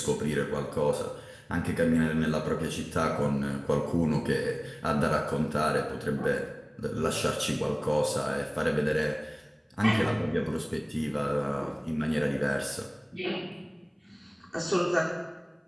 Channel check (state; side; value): identical; both; correlation 1.00